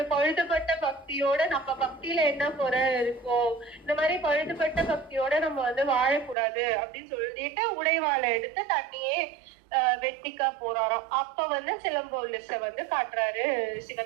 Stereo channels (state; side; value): drops out; left; at 6.4 s